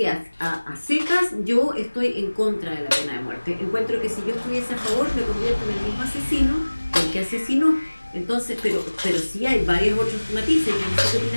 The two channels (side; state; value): both; inverted; correlation -1.00